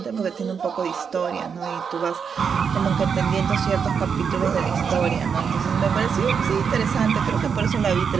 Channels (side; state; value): left; quieter; 6.5 dB